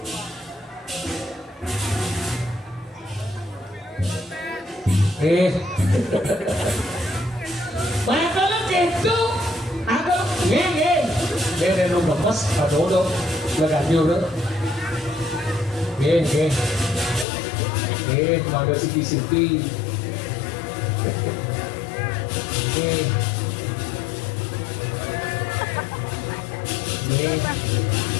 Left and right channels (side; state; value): right; drops out; at 17.2 s